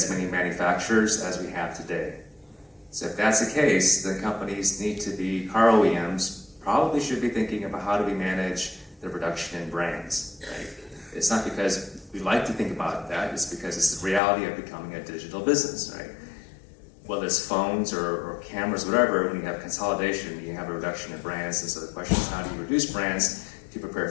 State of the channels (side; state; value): right; drops out; at 14.2 s